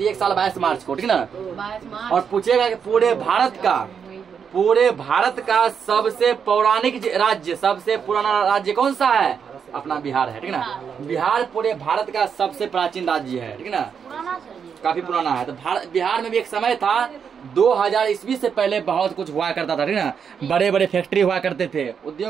साल 22 मार्च को, ठीक ना। और पूछेगा कि पूरे भारत का सबसे पौराणिक राज्य, सबसे पुराना राज्य कौन सा है, अपना बिहार है, ठीक ना। बिहार पूरे भारत का सबसे प्राचीन राज्य है, ठीक ना, काफी पुराना है। तो बिहार में भी एक समय था 2000 ईस्वी से पहले बहुत कुछ हुआ करता था, ठीक ना। बड़े बड़े फैक्ट्री हुआ करते थे, उद्योग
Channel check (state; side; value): quieter; left; 7.0 dB